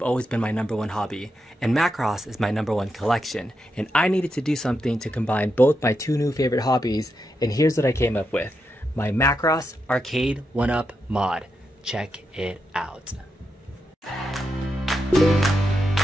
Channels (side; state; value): both; normal; correlation 0.85